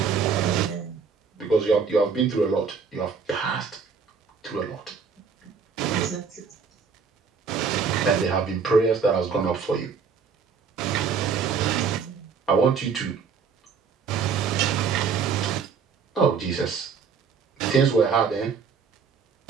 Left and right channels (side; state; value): left; quieter; 5.8 dB